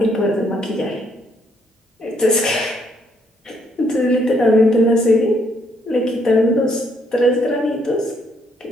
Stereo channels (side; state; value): both; normal; correlation 0.71